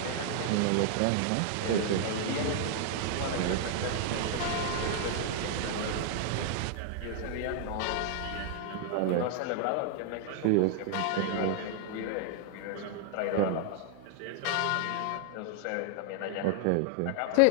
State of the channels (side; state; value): both; different; correlation 0.00